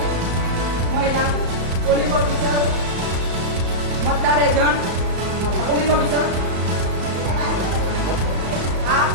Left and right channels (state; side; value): late; left; 34 ms